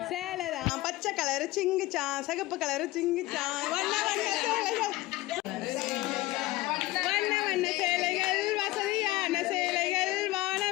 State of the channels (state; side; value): quieter; right; 18.3 dB